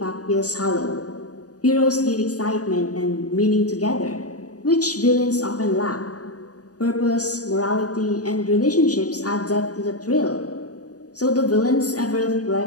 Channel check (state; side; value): late; right; 0.67 ms